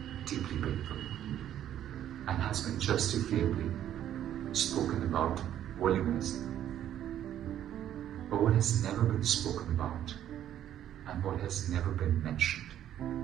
deeply painful and has been justifiably spoken about voluminously. But what has never been spoken about and what has never been mentioned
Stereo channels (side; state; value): left; quieter; 11.1 dB